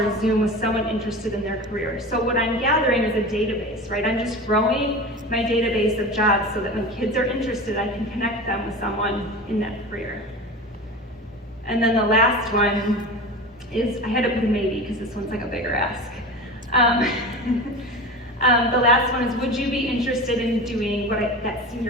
a Zoom with someone interested in their career. So what I'm gathering is a database, right? I'm just growing my database of jobs so that when kids are interested, I can connect them with someone in that career. And then the last one is, I had to put a maybe because this one's like a bigger ask. The last one is, would you be interested in doing that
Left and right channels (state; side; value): normal; both; correlation 0.31